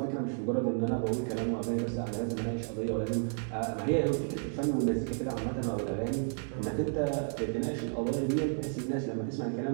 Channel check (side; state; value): left; silent; 56 dB below the other